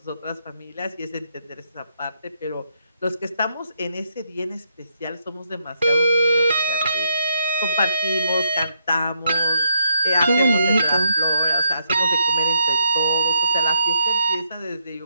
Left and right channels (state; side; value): inverted; both; correlation -0.77